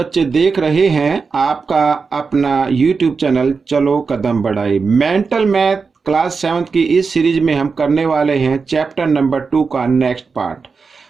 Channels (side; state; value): left; quieter; 4.9 dB